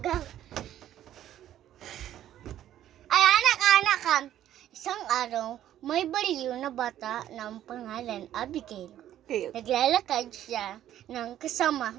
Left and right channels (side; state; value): left; quieter; 11.9 dB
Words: go. Ay, anak. Isang araw, may baliw na bata ng pangalan Abigail. Okay. Naglalakad siya ng kasama